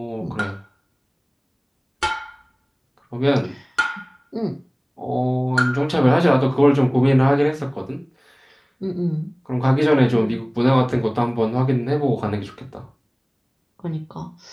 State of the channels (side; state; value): both; identical; correlation 1.00